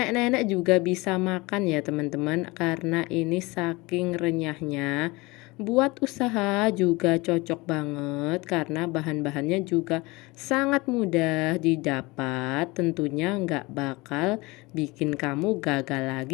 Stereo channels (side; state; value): right; quieter; 23.5 dB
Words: juga bisa makan ya teman-teman, karena ini saking renyahnya. Buat usaha juga cocok banget karena bahan-bahannya juga sangat mudah didapat. Tentunya nggak bakal bikin kamu gagal